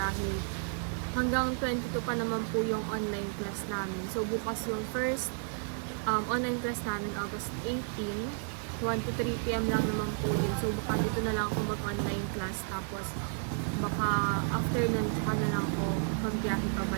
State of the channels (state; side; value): silent; left; 56 dB below the other